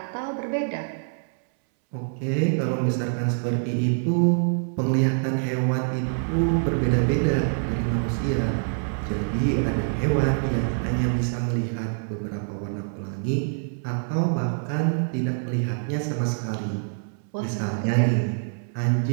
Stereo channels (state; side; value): silent; left; 62 dB below the other